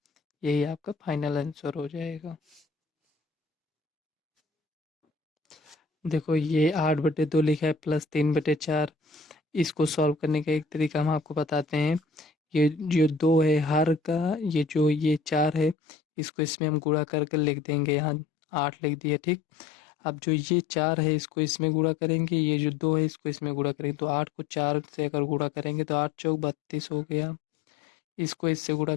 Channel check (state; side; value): drops out; right; at 15.8 s